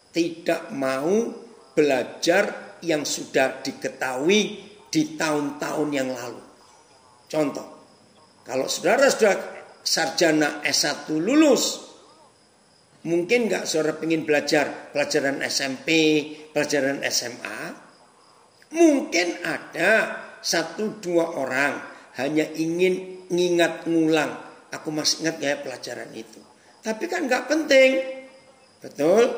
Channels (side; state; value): both; identical; correlation 1.00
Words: Tidak mau belajar yang sudah diketahui di tahun-tahun yang lalu. Contoh, kalau saudara sudah sarjana S1 lulus, mungkin nggak saudara pengen belajar pelajaran SMP, pelajaran SMA? Mungkin ada 1-2 orang hanya ingin ngingat ngulang. Aku masih ingat ya pelajaran itu. Tapi kan gak penting. Betul?